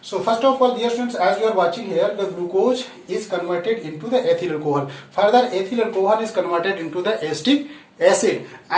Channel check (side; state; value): both; identical; correlation 1.00